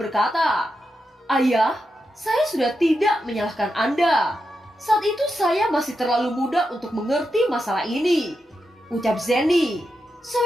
"Ayah, saya sudah tidak menyalahkan Anda. Saat itu saya masih terlalu muda untuk mengerti masalah ini," ucap Zeni.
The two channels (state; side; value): normal; both; correlation 0.87